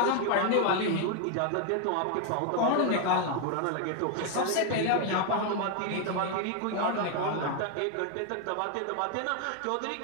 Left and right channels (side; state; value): both; different; correlation 0.01